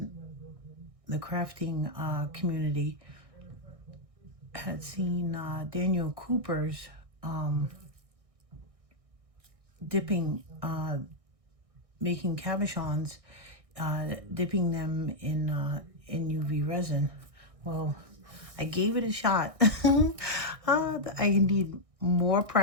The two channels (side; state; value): left; late; 1.6 ms